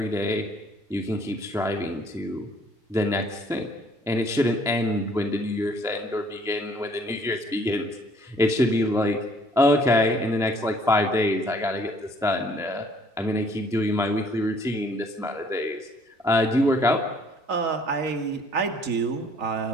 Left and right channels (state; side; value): normal; both; correlation 0.60